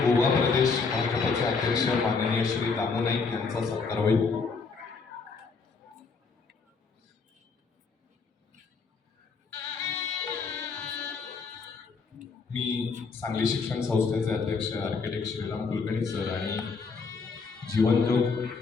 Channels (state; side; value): quieter; right; 4.8 dB